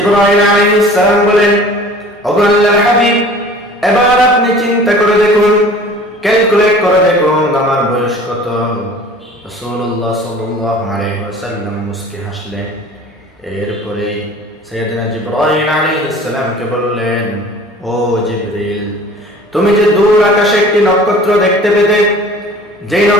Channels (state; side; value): normal; both; correlation 0.45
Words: আলাইহিস সালাম বলেন, ওগো আল্লাহর হাবিব, এবার আপনি চিন্তা করে দেখুন, ক্যালকুলেট করে দেখুন আমার বয়স কত? রাসূলুল্লাহ সাল্লাল্লাহু আলাইহি ওয়াসাল্লাম মুস্কি হাসলেন। এরপরে সাইয়েদনা জিবরাইল আলাইহিস সালামকে বললেন, ও জিবরিল, তুমি যে দূর আকাশে একটি নক্ষত্র দেখতে পেতে, যেই